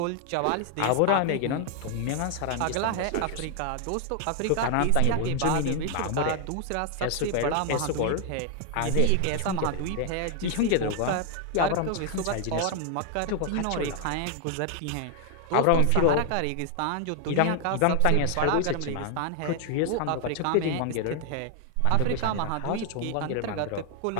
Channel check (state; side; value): different; both; correlation 0.00